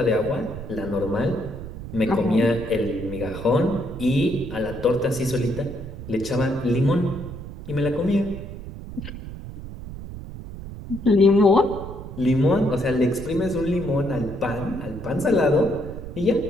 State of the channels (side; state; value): right; noise; rumble, 11 dB below the sound